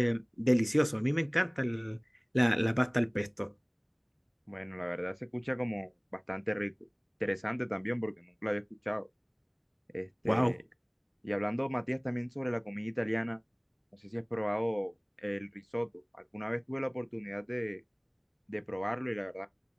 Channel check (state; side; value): identical; both; correlation 1.00